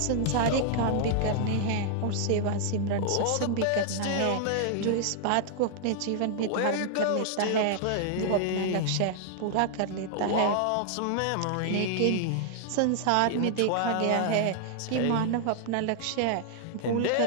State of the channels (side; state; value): both; different; correlation 0.00